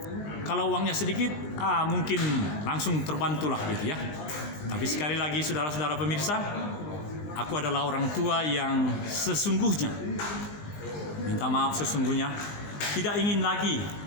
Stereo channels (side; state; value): right; late; 20 ms